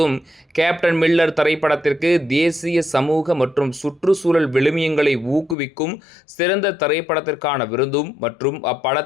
கேப்டன் மில்லர் திரைப்படத்திற்கு தேசிய சமூக மற்றும் சுற்றுச்சூழல் விழுமியங்களை ஊக்குவிக்கும் சிறந்த திரைப்படத்திற்கான விருதும் மற்றும்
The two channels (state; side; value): drops out; right; at 5.6 s